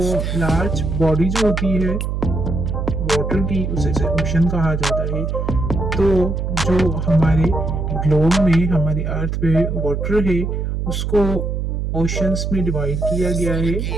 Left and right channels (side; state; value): right; noise; hum, 2 dB below the sound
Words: लार्ज बॉडी जो होती है वाटर की उसे ओशन कहा जाता है। तो जो हमारे ग्लोब में हमारी अर्थ पे वाटर है उसको ओशंस में डिवाइड किया गया है।